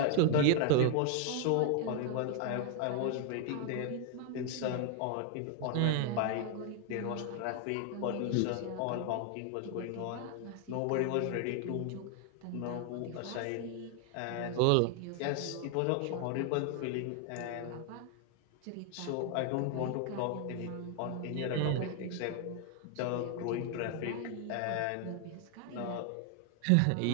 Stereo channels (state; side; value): different; both; correlation 0.00